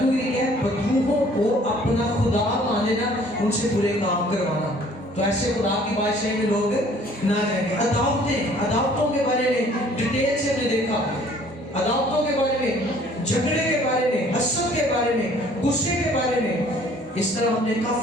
क्या है? बदरूहों को अपना खुदा मान लेना, उनसे बुरे काम करवाना। तो ऐसे खुदा की बादशाही में लोग ना जाएंगे। अदावतों के बारे में डिटेल से हमने देखा, अदावतों के बारे में, झगड़े के बारे में, हसद के बारे में, गुस्से के बारे में, इस तरह हमने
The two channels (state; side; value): normal; both; correlation 0.56